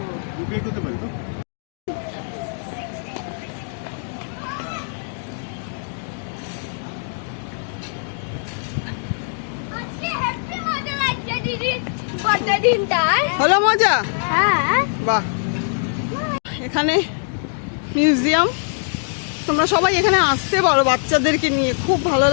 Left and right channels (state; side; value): silent; right; digital silence